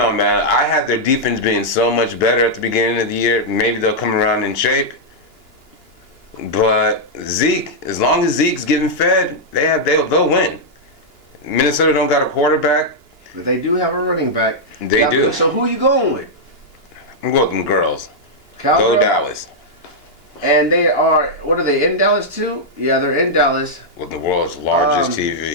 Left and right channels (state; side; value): late; right; 2.9 ms